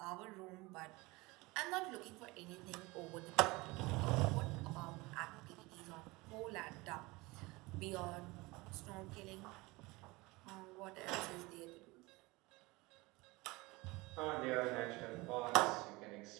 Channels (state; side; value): quieter; left; 22.9 dB